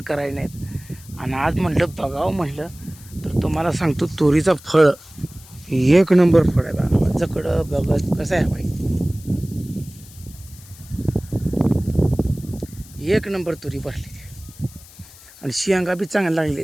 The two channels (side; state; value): left; noise; hiss, 21 dB below the sound